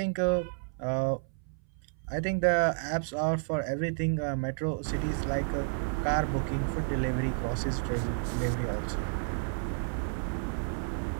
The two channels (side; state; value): left; silent; 57 dB below the other